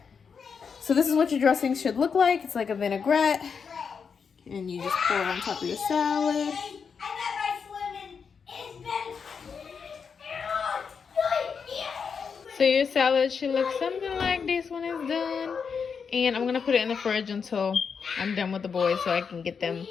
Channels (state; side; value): quieter; right; 6.1 dB